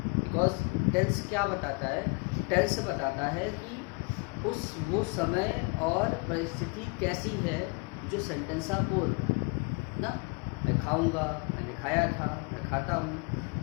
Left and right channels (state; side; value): quieter; right; 32.2 dB